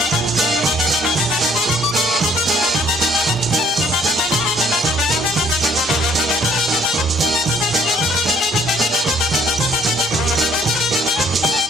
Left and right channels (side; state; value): both; normal; correlation 0.61